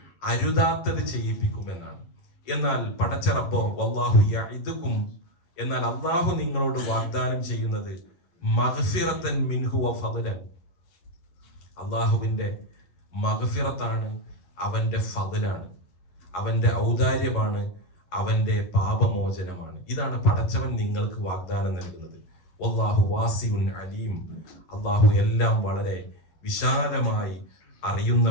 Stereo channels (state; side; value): late; right; 11 ms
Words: അരുതാത്തത് ചെയ്യിപ്പിക്കുമെന്നാണ്. എന്നാൽ പടച്ച റബ്ബോ വല്ലാഹു യഇദുകും, എന്നാൽ അല്ലാഹു നിങ്ങളോട് വാഗ്ദാനം ചെയ്യുന്നത് മഗ്ഫിറത്തൻ മിൻഹു വ ഫദ്ലൻ, അല്ലാഹുവിന്റെ മഗ്ഫിറത്താണ്, അവന്റെ ഫദ്ലാണ്, അവന്റെ ഔദാര്യമാണ്, അവന്റെ പാപമോചനമാണ്. ഇതാണ് പടച്ചവൻ നിങ്ങൾക്ക് വാഗ്ദാനം നൽകുന്നത്. വല്ലാഹു വാസിഉൻ അലീം, അല്ലാഹു എല്ലാം വളരെ വിശാലമായി